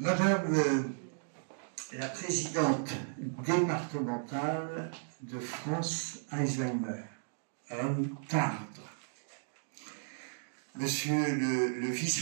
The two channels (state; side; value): silent; left; digital silence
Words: la présidente départementale de France Alzheimer, Madame Tardre, Monsieur le